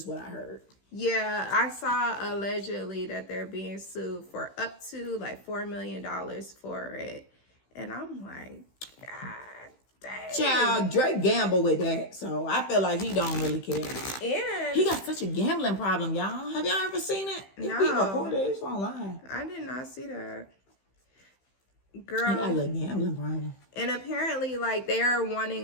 what I heard. Yeah, I saw allegedly that they're being sued for up to like $4 million for it, and I'm like, God dang. Child, Drake gambled with that, so I feel like he don't really care. And he got such a gambling problem, y'all. Have y'all ever seen it? No. He recorded it. It's online. I did not see that. Girl. He got a Girl. little gambling problem. And apparently, like, they're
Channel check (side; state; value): right; late; 15 ms